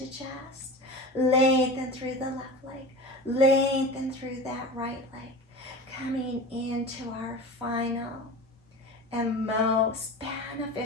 chest. Lengthen through the left leg, lengthen through that right leg, coming into our final and most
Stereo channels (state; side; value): normal; both; correlation 0.32